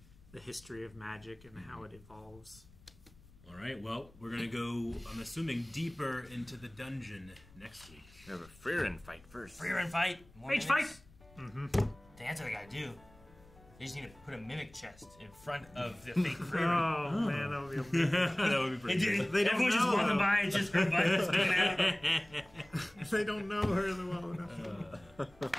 the history of magic and how it evolves. All right. Well, we're gonna go. I'm assuming deeper into the dungeon next week. We have a Frieren fight first. Frieren fight. More Mage mimics. fight! That's what they gotta do. They just need to put a mimic chest in front of the fake Frieren. Oh, man, that would be amazing. That would be pretty good. They don't Everyone just know, walking though. by, it's just her butt sticking out. They don't know her well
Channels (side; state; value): left; noise; rumble, 25 dB below the sound